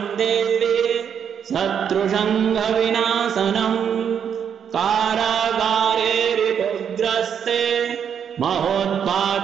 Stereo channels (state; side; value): quieter; left; 8.0 dB